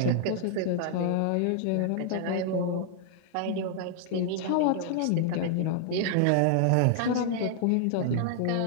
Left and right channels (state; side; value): different; both; correlation 0.00